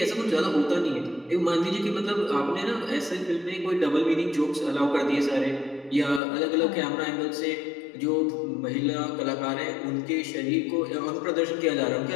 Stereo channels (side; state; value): right; drops out; at 6.2 s